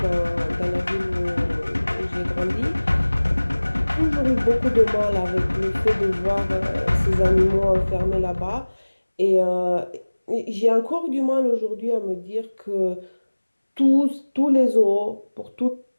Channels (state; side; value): inverted; both; correlation -1.00